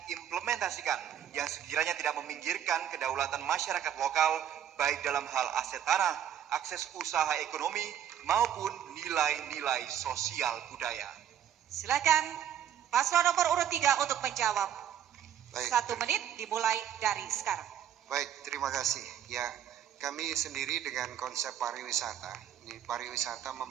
yang sekiranya tidak meminggirkan kedaulatan masyarakat lokal baik dalam hal aset tanah, akses usaha ekonomi maupun nilai-nilai sosial budaya? Silakan paslon nomor urut 3 untuk menjawab. Baik. 1 menit dimulai dari sekarang. Baik, terima kasih. Ya, kami sendiri dengan konsep pariwisata. Ini pariwisata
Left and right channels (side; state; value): left; quieter; 10.0 dB